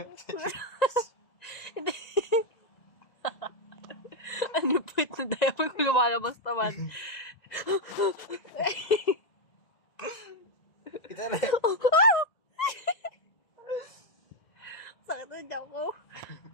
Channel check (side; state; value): right; late; 1.9 ms